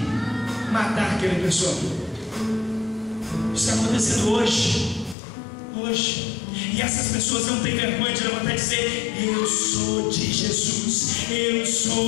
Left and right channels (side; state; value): right; drops out; at 5.2 s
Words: matar aquela pessoa. Isso está acontecendo hoje. E essas pessoas não têm vergonha de levantar e dizer: eu sou de Jesus, eu